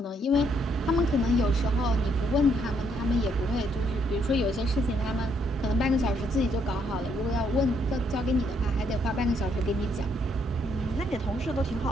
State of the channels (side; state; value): both; normal; correlation 0.72